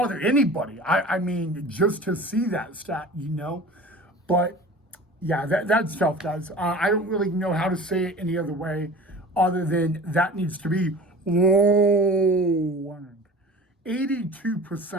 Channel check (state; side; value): normal; both; correlation 0.39